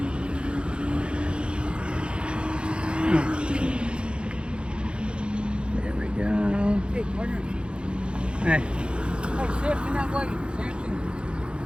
There we go. Hey, partner. Hey. Hey, Samson, that way. Samson.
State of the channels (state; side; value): late; left; 0.055 ms